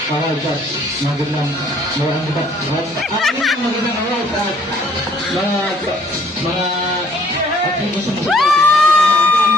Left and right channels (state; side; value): normal; both; correlation 0.61